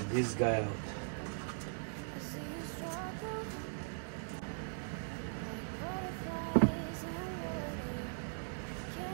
this guy out.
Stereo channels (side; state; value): left; silent; 51 dB below the other